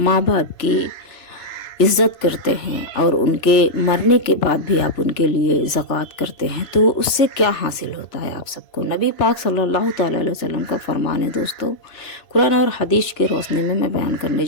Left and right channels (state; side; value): late; right; 2.9 ms